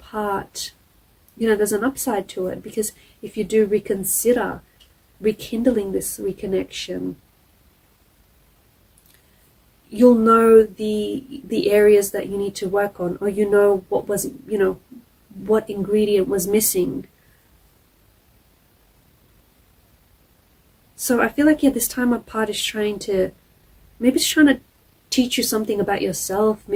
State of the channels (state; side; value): identical; both; correlation 1.00